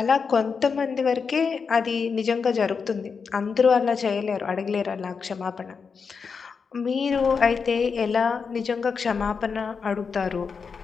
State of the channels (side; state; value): right; quieter; 5.6 dB